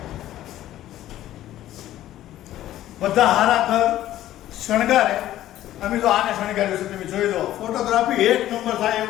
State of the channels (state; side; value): quieter; right; 13.5 dB